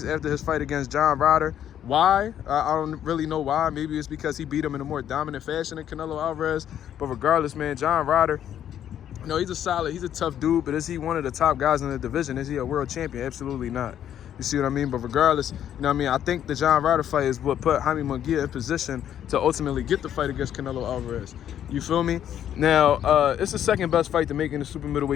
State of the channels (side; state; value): right; quieter; 10.2 dB